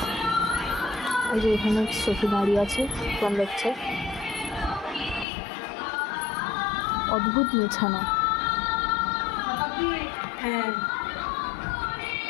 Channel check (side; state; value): right; drops out; at 5.2 s